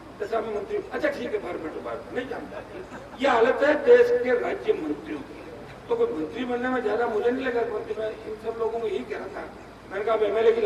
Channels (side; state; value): both; identical; correlation 1.00